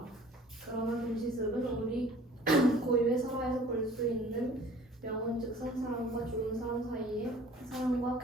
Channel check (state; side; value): normal; both; correlation 0.50